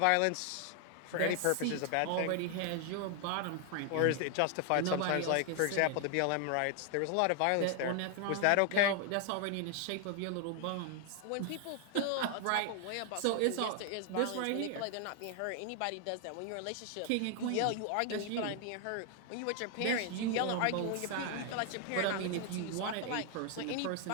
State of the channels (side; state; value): both; different; correlation 0.00